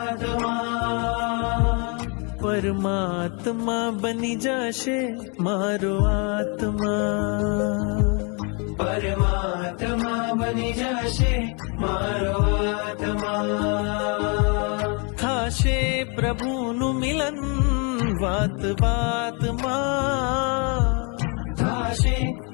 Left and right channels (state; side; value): quieter; right; 34.7 dB